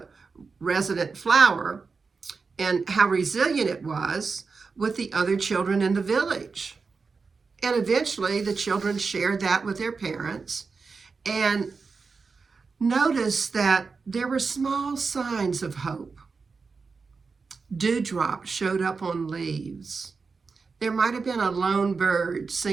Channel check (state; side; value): quieter; left; 4.7 dB